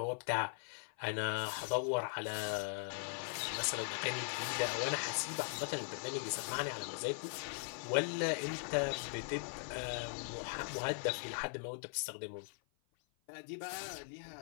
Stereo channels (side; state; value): right; silent; 51 dB below the other